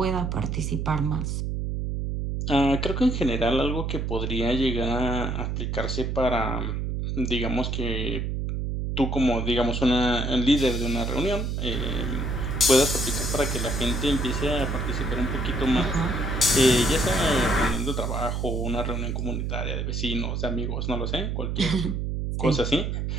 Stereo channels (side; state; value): right; noise; hum, 1 dB below the sound